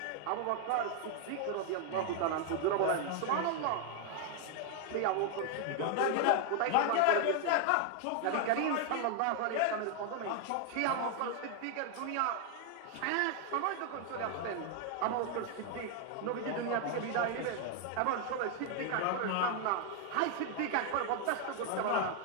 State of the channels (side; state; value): both; different; correlation 0.00